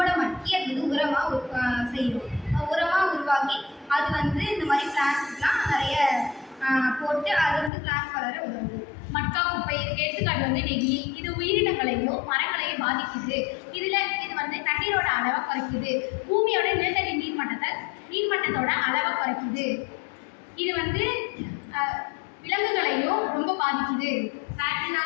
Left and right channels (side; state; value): right; drops out; at 7.7 s